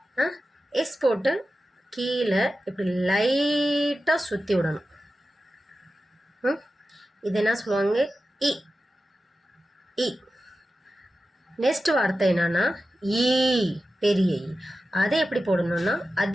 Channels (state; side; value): normal; both; correlation 0.93